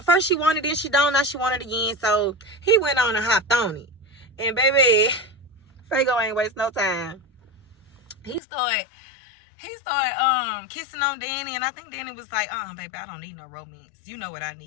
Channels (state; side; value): drops out; right; at 8.4 s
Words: wanted it, she don't, now she wanted it again. So he went on and hopped on it. And baby, Fago ain't waste no time. He started kissing on Danny, and I think Danny was like, baby, I don't need no romance. You know what I